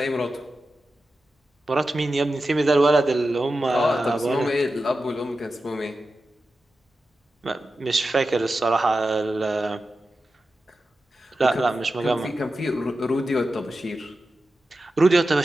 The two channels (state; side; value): normal; both; correlation 0.92